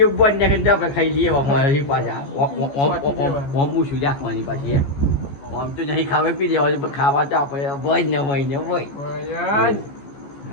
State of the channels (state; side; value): late; right; 14 ms